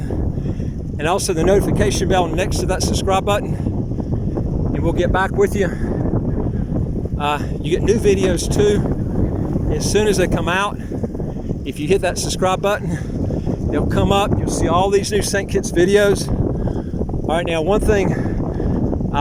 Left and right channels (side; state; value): both; identical; correlation 1.00